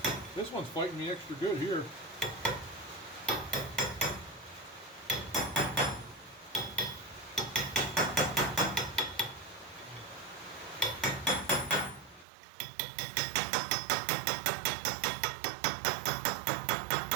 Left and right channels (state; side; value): drops out; left; at 12.2 s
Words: This one's fighting me extra good here.